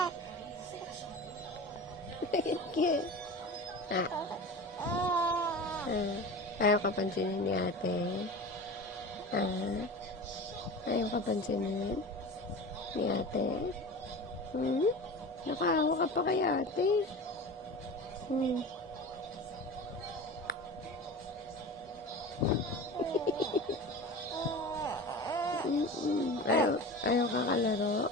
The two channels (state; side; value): normal; both; correlation 0.33